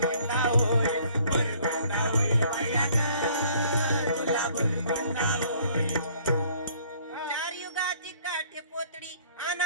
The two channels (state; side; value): inverted; both; correlation -0.58